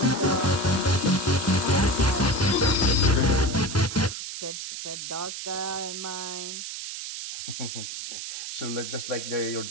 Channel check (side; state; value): right; noise; hiss, 7 dB below the sound